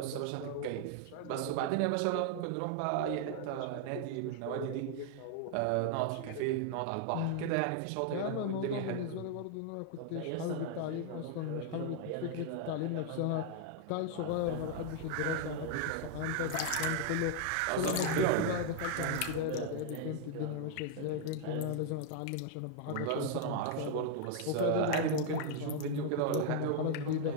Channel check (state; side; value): different; both; correlation 0.00